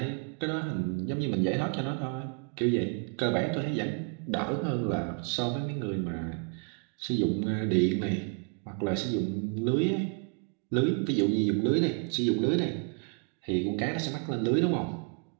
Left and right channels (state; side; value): quieter; left; 35.6 dB